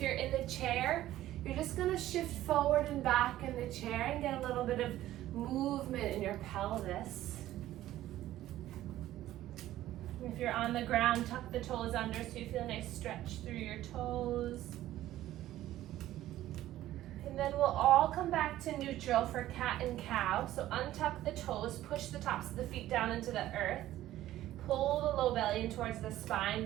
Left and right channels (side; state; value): left; quieter; 14.1 dB